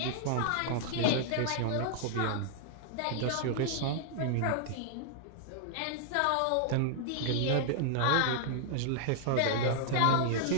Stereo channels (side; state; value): both; different; correlation -0.01